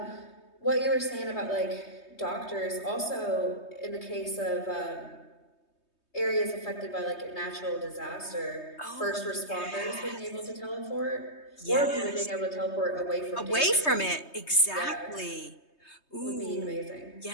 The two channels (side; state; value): right; late; 3.2 ms